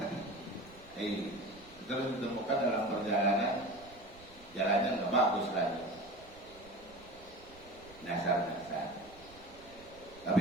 Terus ditemukan dalam perjalanan jalannya nggak bagus lagi, nasar-nasar. Tapi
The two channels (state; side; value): noise; right; rumble, 23 dB below the sound